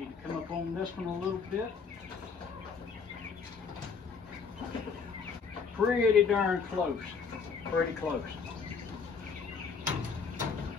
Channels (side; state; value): right; quieter; 5.5 dB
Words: to come up on this one a little bit. pretty darn close. Pretty close.